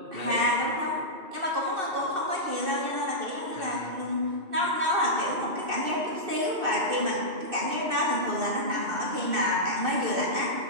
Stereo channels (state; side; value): late; left; 2.6 ms